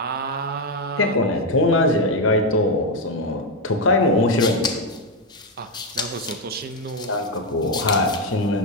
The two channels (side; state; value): both; normal; correlation 0.06